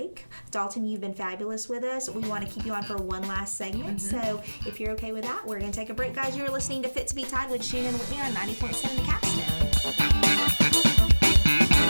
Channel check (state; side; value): inverted; both; correlation -1.00